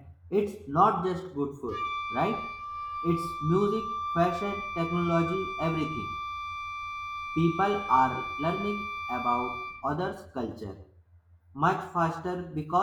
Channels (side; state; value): both; identical; correlation 1.00